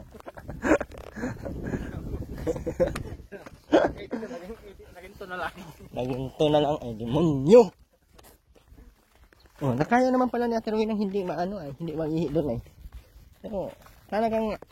Naging to na lang. Naging to na lang ay demonyo. Oh, nakaya naman pala ni Ate Rowena ng hindi maano ay, hindi mag-ihi doon ay. Pero talagang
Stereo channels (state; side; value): identical; both; correlation 1.00